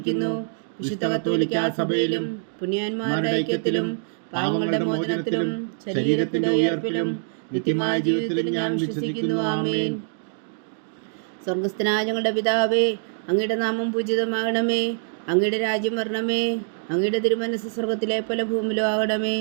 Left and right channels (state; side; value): silent; left; 62 dB below the other